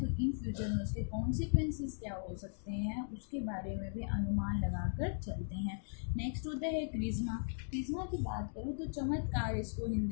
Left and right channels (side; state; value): right; silent; digital silence